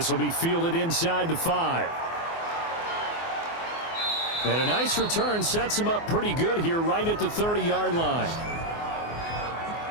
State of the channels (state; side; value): late; right; 24 ms